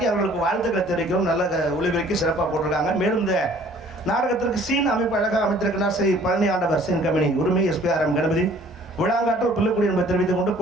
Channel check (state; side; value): normal; both; correlation 0.54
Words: அவர்களுக்கு வாழ்த்துக்களை தெரிவிக்கிறோம். நல்ல ஒளிபரப்பி சிறப்பாக போட்டிருக்காங்க. மேலும் இந்த நாடகத்திற்கு சீன் அமைப்பு அழகாக அமைத்திருக்கிறார் ஸ்ரீ பழனி ஆண்டவர் சீன் கம்பெனி உரிமை SPRM கணபதி விழாங்காட்டூர் பிள்ளைக்குடி என்பதை தெரிவித்துக் கொண்டு